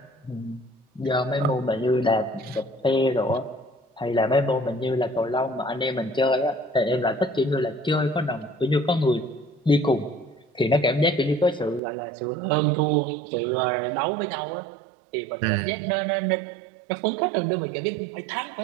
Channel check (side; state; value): left; drops out; at 11.8 s